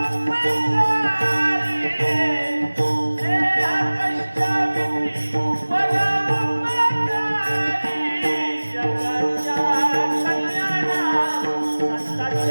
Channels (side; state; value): both; inverted; correlation -1.00